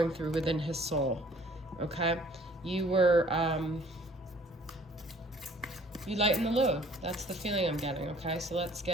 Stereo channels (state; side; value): normal; both; correlation 0.56